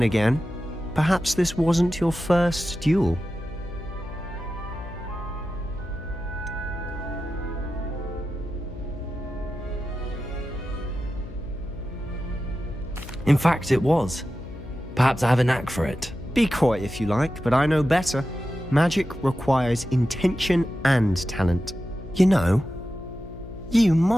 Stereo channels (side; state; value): left; noise; hum, 14 dB below the sound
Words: again, perhaps this wasn't your first duel. In fact, it was. Perhaps I have a knack for it. Be quiet if you like, but I know better. Magic requires intention and talent. You know, you